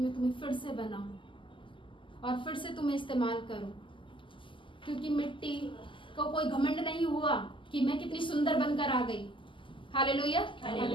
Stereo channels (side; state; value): right; late; 0.25 ms